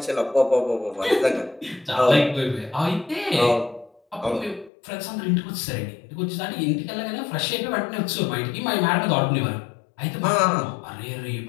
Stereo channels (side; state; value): right; drops out; at 4.7 s